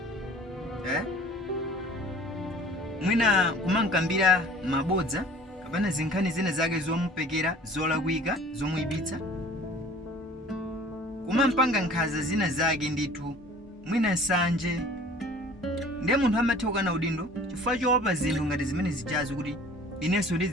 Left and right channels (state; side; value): normal; both; correlation 0.47